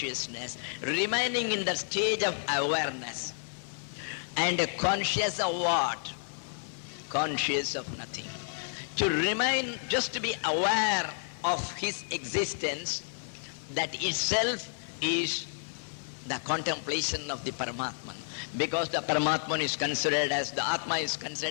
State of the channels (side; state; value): right; silent; 57 dB below the other